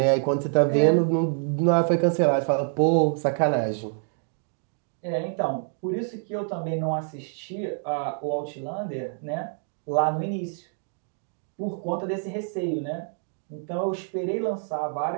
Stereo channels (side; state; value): left; silent; 61 dB below the other